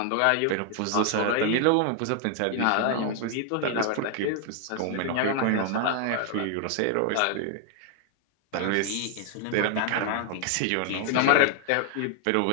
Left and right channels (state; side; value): different; both; correlation 0.00